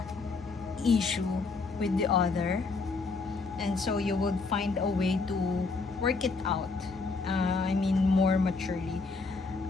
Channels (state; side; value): quieter; right; 4.1 dB